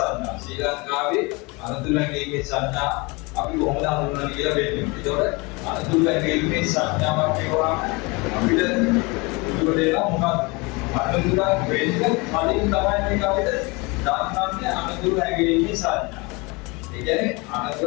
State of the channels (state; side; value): quieter; right; 26.7 dB